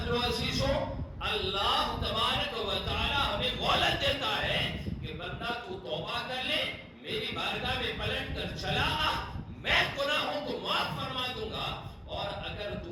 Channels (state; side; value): identical; both; correlation 1.00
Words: لو عزیزو، اللہ تبارک و تعالی ہمیں مہلت دیتا ہے کہ بندہ تو توبہ کر لے، میری بارگاہ میں پلٹ کر چلا آ، میں گناہوں کو معاف فرما دوں گا، اور اگر